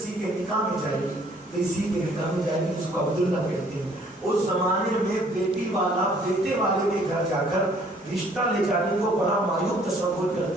کے نکاح میں جائے گی تو اسی کے نکاح میں جائے گی, جس کو عبداللہ کہتے ہیں. اس زمانے میں بیٹی والا بیٹے والے کے گھر جا کر رشتہ لے جانے کو بڑا معیوب تصور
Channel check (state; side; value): normal; both; correlation 0.60